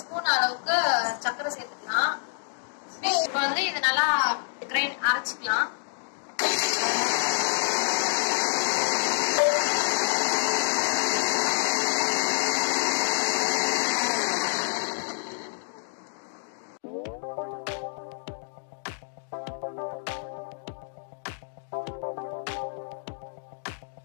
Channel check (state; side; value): silent; right; digital silence